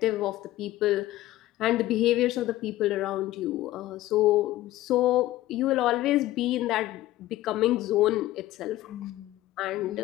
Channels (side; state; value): right; quieter; 15.7 dB